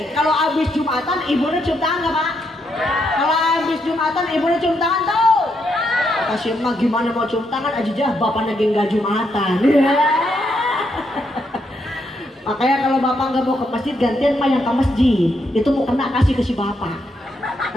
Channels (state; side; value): normal; both; correlation 0.78